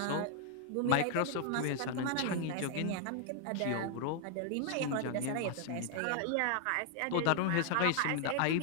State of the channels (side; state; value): both; different; correlation 0.00